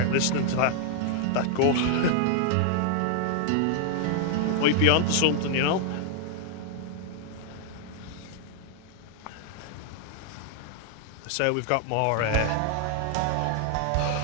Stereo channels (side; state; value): both; different; correlation 0.00